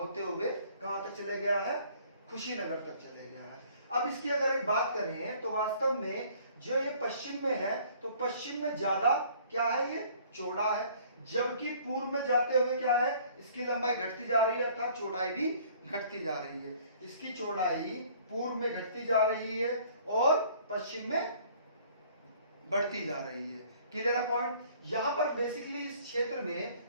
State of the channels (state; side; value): inverted; both; correlation -0.56